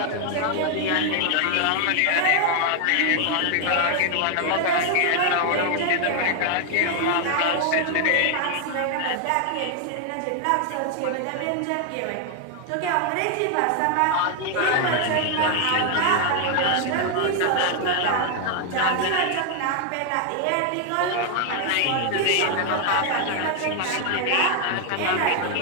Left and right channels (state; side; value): different; both; correlation 0.00